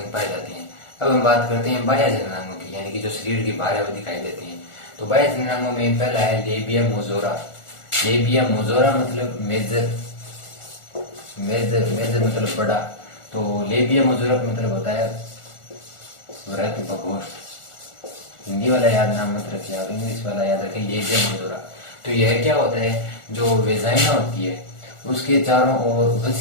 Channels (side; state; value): right; late; 1.4 ms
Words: पाए जाते हैं। अब हम बात करते हैं बाह्य जननांगों की, यानी कि जो शरीर के बाहर है वो दिखाई देते हैं। तो बाह्य जननांगों में पहला है लेबिया मोजोरा। लेबिया मोजोरा मतलब मेजर, मेजर मतलब बड़ा। तो लेबिया मोजोरा का मतलब होता है वृहत प्रकोष्ठ। हिंदी वाला याद नाम मत रखिए आप, इंग्लिश वाला याद रखिए, लेबिया मोजोरा। तो यह क्या होता है? जो वेजाइना होती है उसके चारों ओर